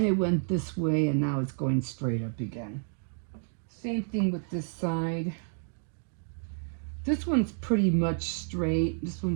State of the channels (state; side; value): silent; left; 56 dB below the other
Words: it went this way, and now it's going straight up again. Same thing with this side. This one's pretty much straight. This